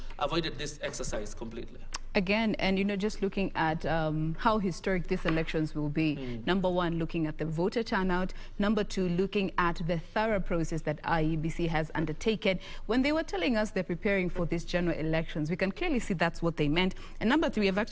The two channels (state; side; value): identical; both; correlation 1.00